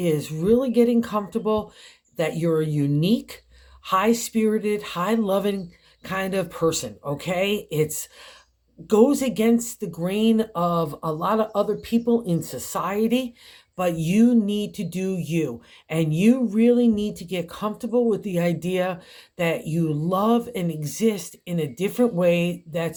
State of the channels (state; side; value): identical; both; correlation 1.00